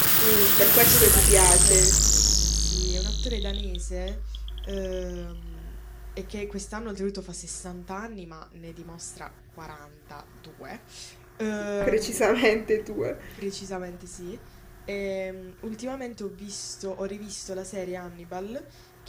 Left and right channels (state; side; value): identical; both; correlation 1.00